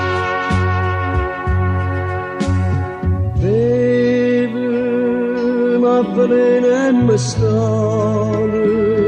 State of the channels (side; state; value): both; identical; correlation 1.00